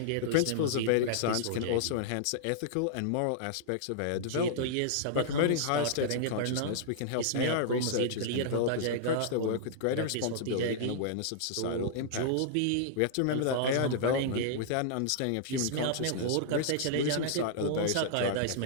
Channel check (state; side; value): different; both; correlation -0.02